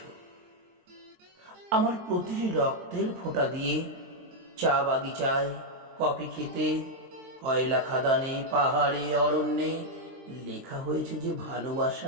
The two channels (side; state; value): left; late; 23 ms